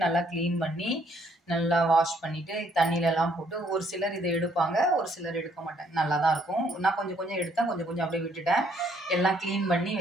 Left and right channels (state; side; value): normal; both; correlation 0.67